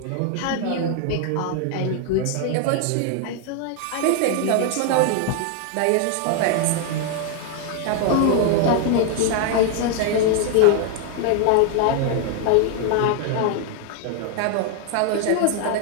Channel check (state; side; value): different; both; correlation 0.00